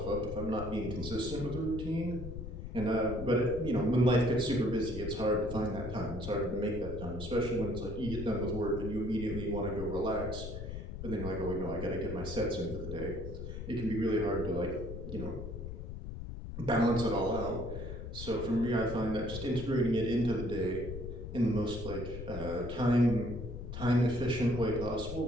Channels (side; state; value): left; noise; rumble, 7 dB below the sound